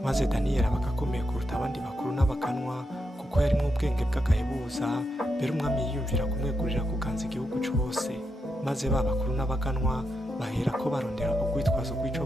Maze Daniyeli aba akomeye kuruta abandi bakuru n'abaganwa, kuko yarimwo ubwenge bw'agahebuza. Mbere umwami yiyumvira kumwegurira kuganza igihugu cose. Maze ba bakuru n'abaganwa bahera ko barondera ubwitwazo bw'ico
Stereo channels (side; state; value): both; normal; correlation 0.84